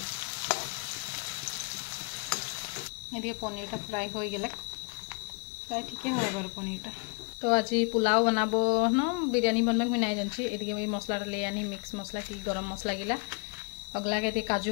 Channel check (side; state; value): right; quieter; 35.4 dB